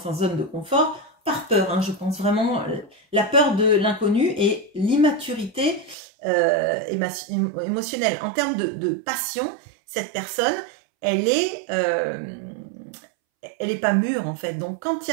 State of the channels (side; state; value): left; drops out; at 6.0 s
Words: zone de confort, par peur, hein, je pense vraiment, la peur de l'inconnu et l'immaturité émotionnelle. En termes de passion, cette personne, elle est pas mûre en fait. Donc quand il